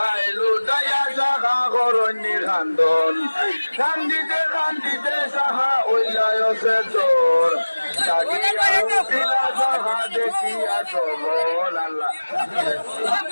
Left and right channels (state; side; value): inverted; both; correlation -1.00